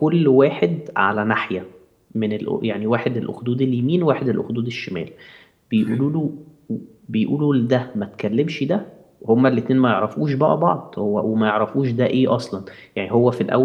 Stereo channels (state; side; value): identical; both; correlation 1.00